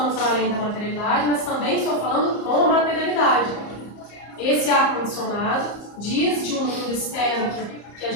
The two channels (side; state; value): right; late; 34 ms